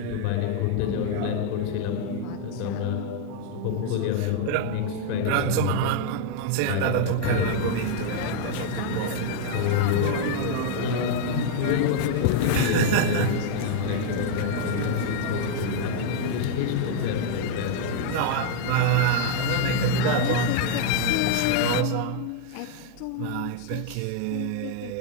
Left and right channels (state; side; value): different; both; correlation -0.01